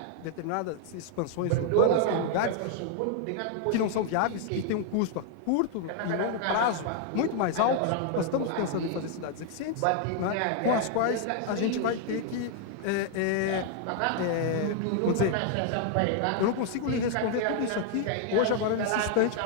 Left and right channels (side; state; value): both; different; correlation 0.00